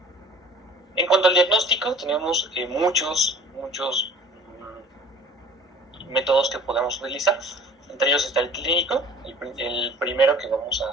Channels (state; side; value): normal; both; correlation 0.47